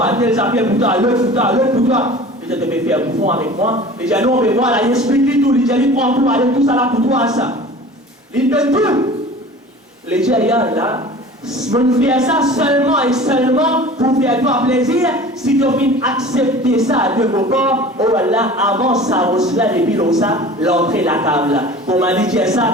tel ça fait pour toi, l'autre pour toi, l'autre pour toi. Je te fais faire bouffon avec moi. Les gens, on veut voir là, il explique tout, les gens, ils prennent tout, allez, tout ça là pour toi, ça. Ils donnent tout. Les gens, là, on fait ça seulement et seulement pour faire toi plaisir. Si tu viens accepter ça de vos corps, oh là, avant ça, Rosla, depuis ça, l'entrée la table. Pour m'a dit ça,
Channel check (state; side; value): normal; both; correlation 0.41